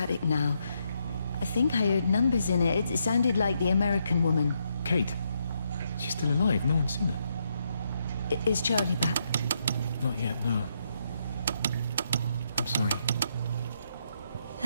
now. I think I heard numbers in it. It sounded like the American woman. Kate? She's still alive. No one's seen her. Is Charlie back? Not yet, no. I'm sorry.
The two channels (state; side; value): inverted; both; correlation -0.78